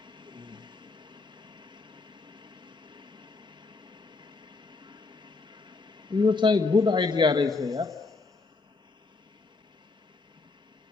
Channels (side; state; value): right; quieter; 3.9 dB